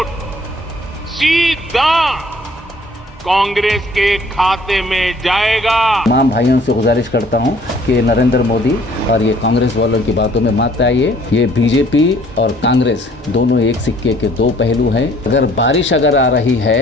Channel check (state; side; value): normal; both; correlation 0.58